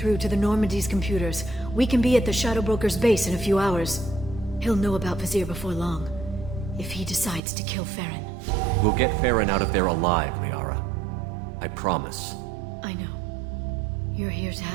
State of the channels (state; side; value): drops out; left; at 7.4 s